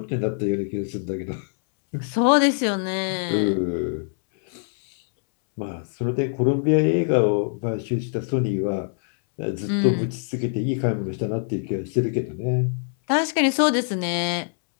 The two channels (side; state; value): right; silent; 63 dB below the other